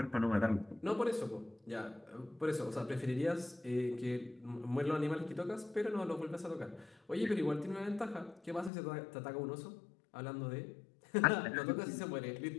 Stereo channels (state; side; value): drops out; right; at 8.7 s